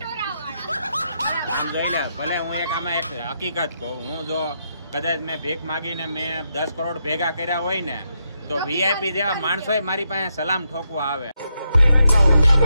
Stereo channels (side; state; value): both; inverted; correlation -0.82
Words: હું જોઈ લે ભલે હું એક આમાં એક હકીકત કહું હું જો કદાચ મેં ભીખ માગીને મેં 10 કરોડ ભેગા કર્યા હોય ને તો વીઆઈપી જેવા માણસો મારી પાસે સલામ ઠોકવા આવે.